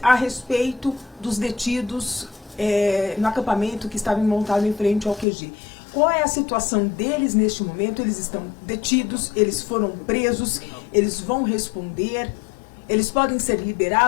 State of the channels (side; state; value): right; drops out; at 5.2 s